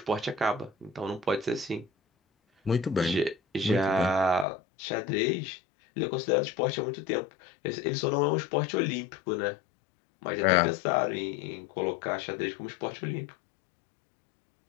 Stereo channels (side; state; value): right; drops out; at 4.5 s